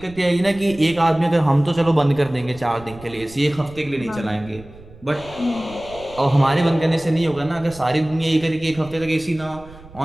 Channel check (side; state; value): right; noise; rumble, 20 dB below the sound